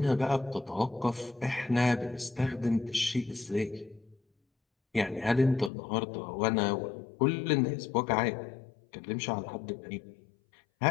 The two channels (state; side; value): drops out; right; at 5.7 s